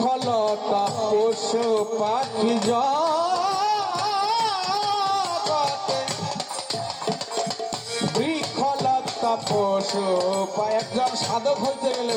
পশু পাখি জগতে, বৃক্ষলতা পশু পাখি। একজন সাধক হইতে গেলে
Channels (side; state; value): both; identical; correlation 1.00